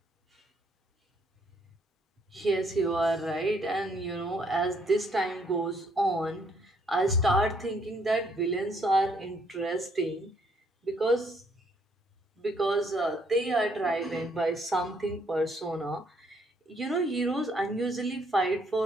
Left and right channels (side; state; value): both; normal; correlation 0.68